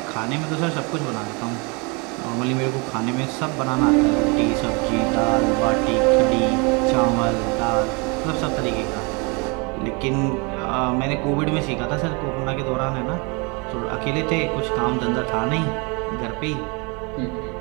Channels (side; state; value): left; quieter; 30.4 dB